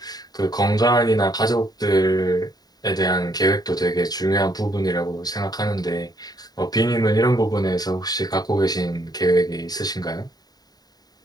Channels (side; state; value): right; late; 0.19 ms